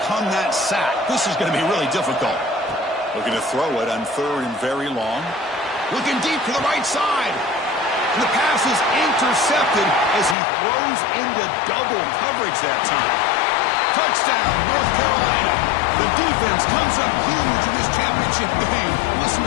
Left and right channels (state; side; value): drops out; right; at 10.4 s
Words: that sack. This is going to be really difficult. Looking to throw it on third and very long. Looking deep to the right side. And the pass is intercepted as he throws into double coverage that time. Touchdown, North Carolina. The defense comes up huge in this championship game. Listen